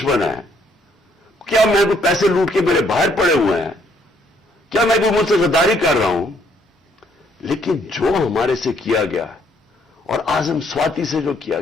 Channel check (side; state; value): both; normal; correlation 0.68